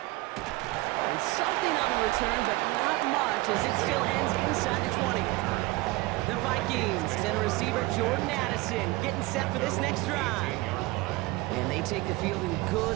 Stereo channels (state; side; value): quieter; left; 21.2 dB